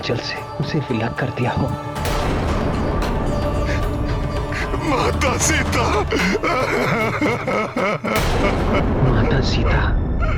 से उसे विलग कर दिया हो। माता सीता, माता सीता,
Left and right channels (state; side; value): identical; both; correlation 1.00